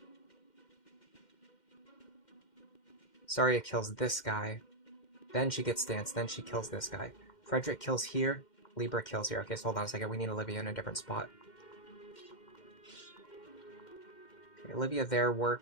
Saria kills this guy. Then she gets danced. Then she kills this guy. Frederick kills here. Libra kills here. Okay, so hold on a second. We need Olivia in a different spot. Okay, Olivia there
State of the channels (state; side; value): late; right; 2.1 ms